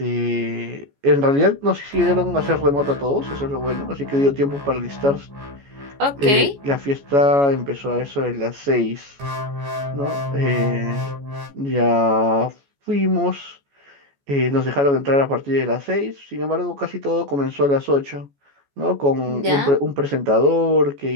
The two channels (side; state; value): left; late; 14 ms